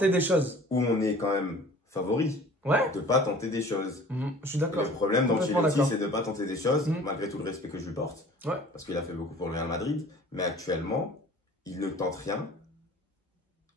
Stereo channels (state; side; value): normal; both; correlation 0.47